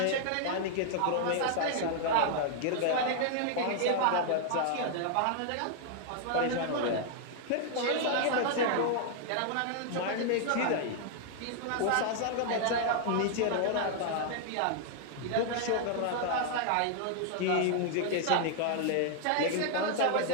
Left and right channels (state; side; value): different; both; correlation 0.00